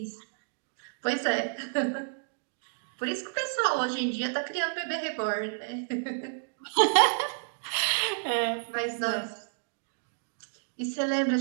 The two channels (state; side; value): silent; left; digital silence